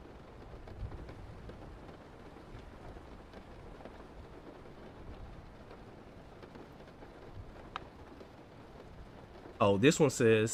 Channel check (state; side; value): identical; both; correlation 1.00